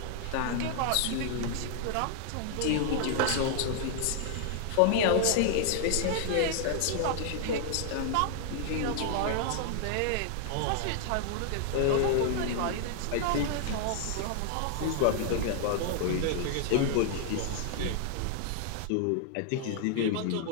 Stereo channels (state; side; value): different; both; correlation -0.01